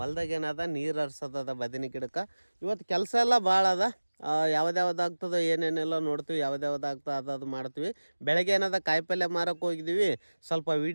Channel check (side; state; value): both; inverted; correlation -1.00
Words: ಏನದ ನೀರು ಹರ್ಸೋದದ ಬದನಿ ಗಿಡಕ್ಕೆ. ಇವತ್ತು ಕೆಲಸ ಎಲ್ಲ ಭಾಳ ಅದ. ಯಾವ್ದು ಆಗ್ತದೋ ಏನೇನೆಲ್ಲ ನೋಡ್ತೀವಿ, ಯಾವ್ದು ಆಗ್ತದೆ ಅದು ಮಾಡ್ತೀವಿ. ಬೆಳಗ್ಗೆ ಏನದ ಕಾಯಿಪಲ್ಯ ಮಾರಕ್ಕೆ ಹೋಗಿದ್ದೀವಿ. ಸ್ವಲ್ಪ